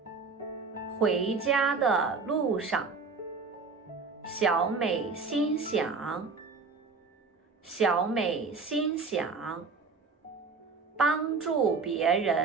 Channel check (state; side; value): quieter; left; 4.5 dB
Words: 回家的路上，小美心想，小美心想，帮助别